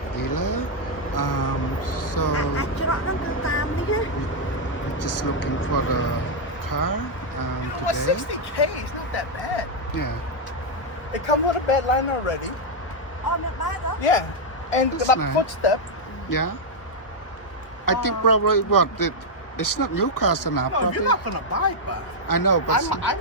dealer. So អាចច្រកហ្នឹងគឺតាមនេះណា we just looking for the car Well, today. 60K is not that bad. Yeah, It comes with a bed line already. អូមានបាតហ៎ Yeah. And That's the nice. footstep. yeah. I think probably what it's not new car enough. No, you're Probably. not gonna buy it, but I know, but I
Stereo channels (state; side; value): late; right; 1.3 ms